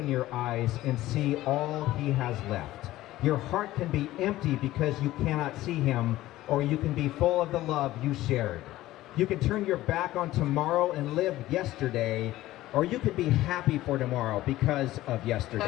your eyes and see all he has left. Your heart can be empty because you cannot see him, or you can be full of the love you shared. You can turn your back on tomorrow and live yesterday, or you can be happy for tomorrow because of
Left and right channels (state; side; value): quieter; right; 15.9 dB